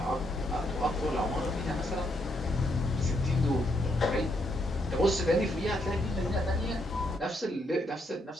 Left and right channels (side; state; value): both; normal; correlation 0.76